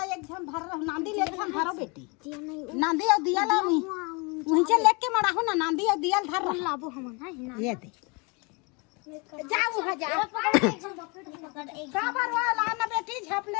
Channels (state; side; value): quieter; right; 30.2 dB